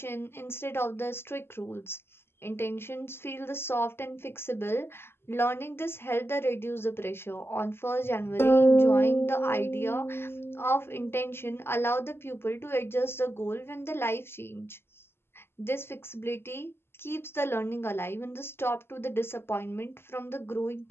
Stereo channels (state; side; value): late; right; 0.11 ms